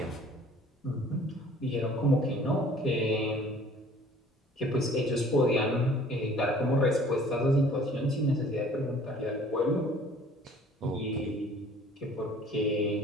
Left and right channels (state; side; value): normal; both; correlation 0.53